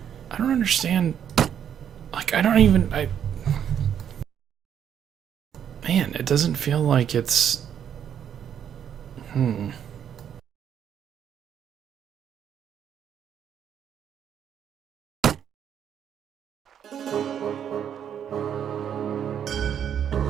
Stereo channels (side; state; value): left; quieter; 8.9 dB